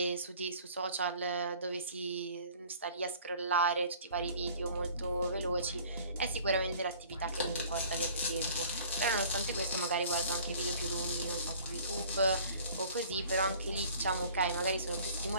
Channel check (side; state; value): both; inverted; correlation -0.50